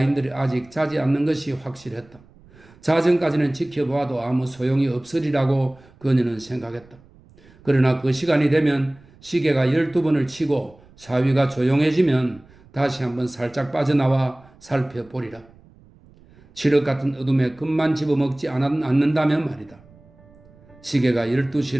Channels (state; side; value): noise; right; rumble, 27 dB below the sound